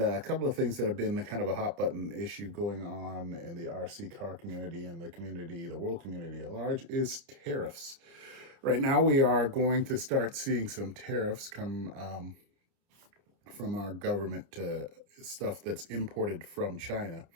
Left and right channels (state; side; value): late; left; 30 ms